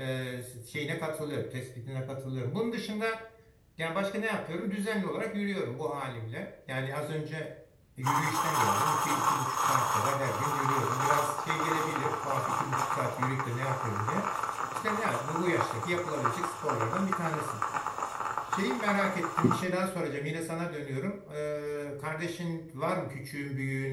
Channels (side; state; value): both; identical; correlation 1.00